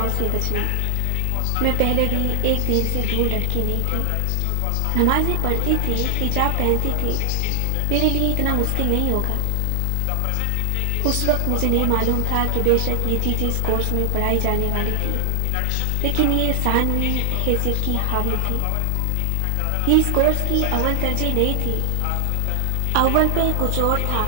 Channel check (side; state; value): both; different; correlation 0.00